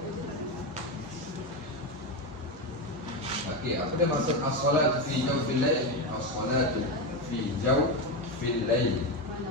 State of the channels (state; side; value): normal; both; correlation 0.13